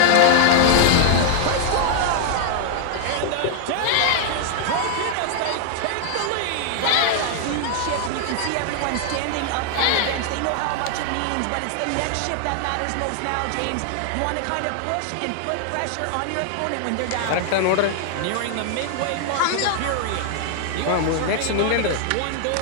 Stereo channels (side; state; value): both; different; correlation 0.00